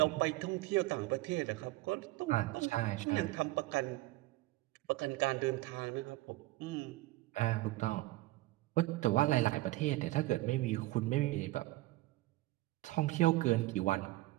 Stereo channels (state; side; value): quieter; left; 18.8 dB